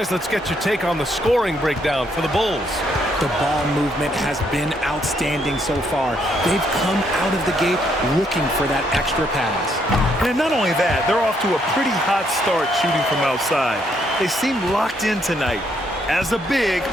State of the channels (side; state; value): both; normal; correlation 0.72